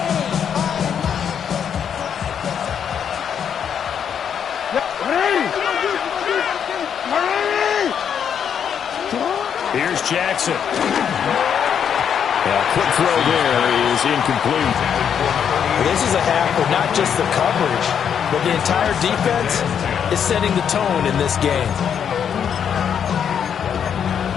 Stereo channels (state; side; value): quieter; right; 8.1 dB